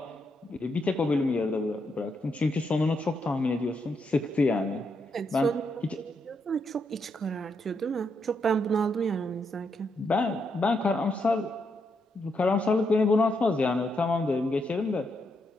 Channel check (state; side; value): normal; both; correlation 0.79